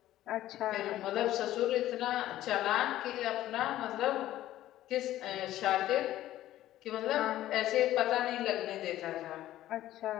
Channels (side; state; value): right; quieter; 13.9 dB